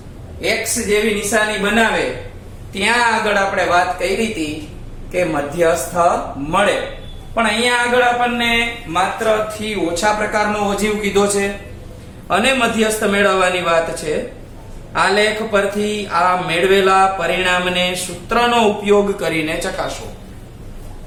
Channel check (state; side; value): identical; both; correlation 1.00